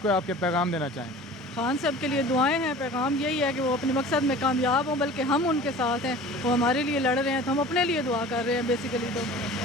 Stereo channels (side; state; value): both; normal; correlation 0.41